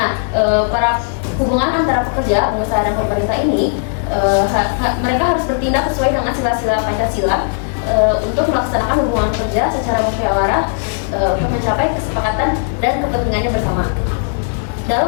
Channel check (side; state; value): right; silent; digital silence